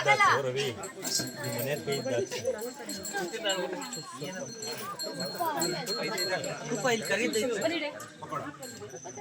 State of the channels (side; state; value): both; identical; correlation 1.00